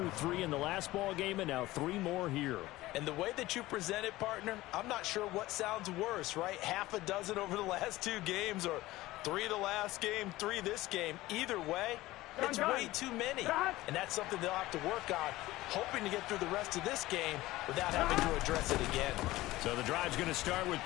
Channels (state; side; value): quieter; right; 17.7 dB